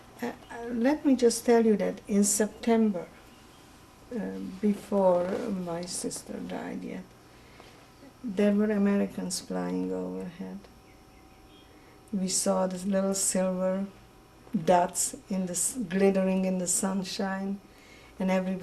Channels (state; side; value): identical; both; correlation 1.00